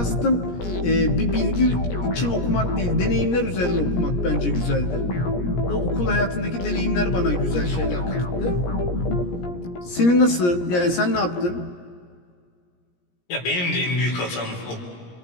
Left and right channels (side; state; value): right; late; 17 ms